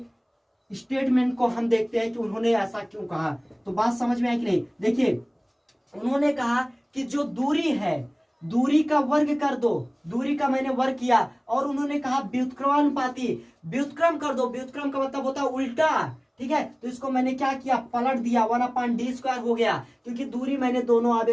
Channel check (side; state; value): both; identical; correlation 1.00